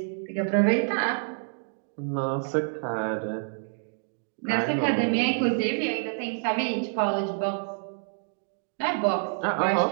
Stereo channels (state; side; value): silent; left; digital silence